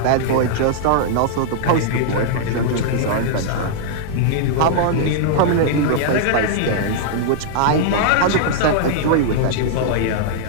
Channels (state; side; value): different; both; correlation -0.01